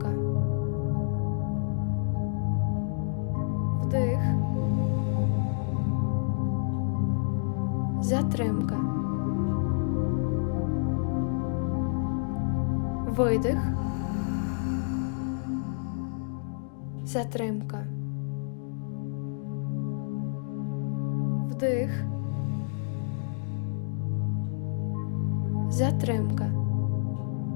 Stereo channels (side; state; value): right; silent; digital silence